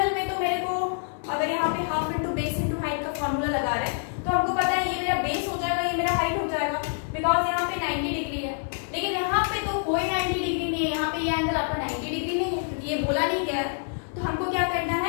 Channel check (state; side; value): silent; right; digital silence